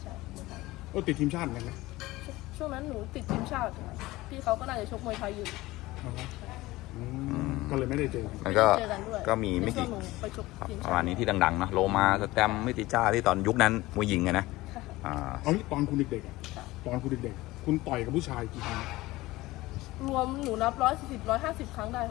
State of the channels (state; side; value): quieter; right; 18.9 dB